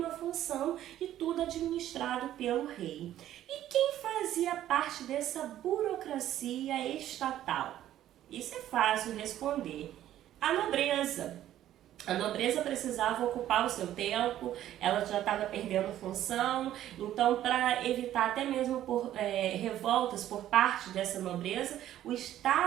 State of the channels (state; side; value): quieter; left; 12.4 dB